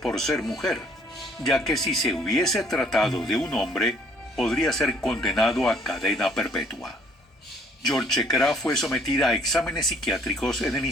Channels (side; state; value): both; normal; correlation 0.60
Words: ser mujer, ya que si se hubiese tratado de un hombre, podría ser condenado a cadena perpetua. Yolchekara fue sometida a exámenes psiquiátricos en el